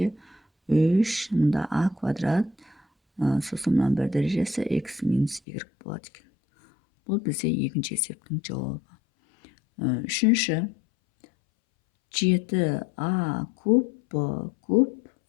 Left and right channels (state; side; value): drops out; right; at 5.4 s